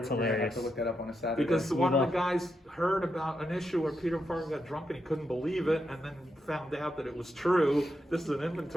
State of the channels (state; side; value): normal; both; correlation 0.84